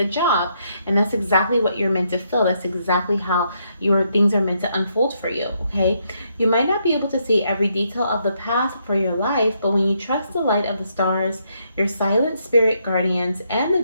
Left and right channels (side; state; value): both; inverted; correlation -0.76